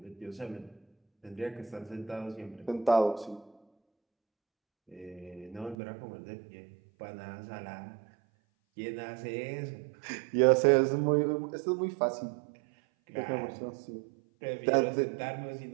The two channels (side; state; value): left; drops out; at 5.8 s